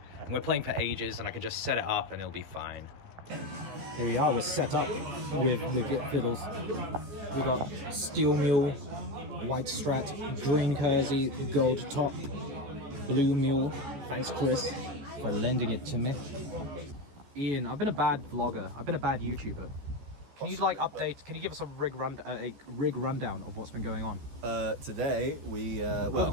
And we're playing for ages, and I can just set it up and it'll be fine. Here we are, we're set up with the fiddles. We got steel mule, white strat, green kersey, gold top, blue mule. Thanks, Chris, for lending it to me. Ian, I've been a bad vlogger. I've been a bad YouTuber. Can you like update? Can you give us a rig rundown of what's been going on? Today we Over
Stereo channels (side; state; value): left; late; 14 ms